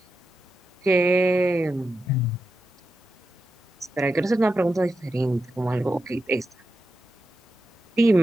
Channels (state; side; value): normal; both; correlation 0.89